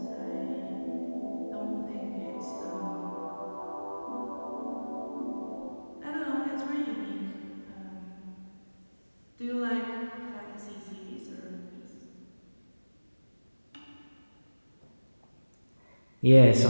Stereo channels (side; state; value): both; inverted; correlation -1.00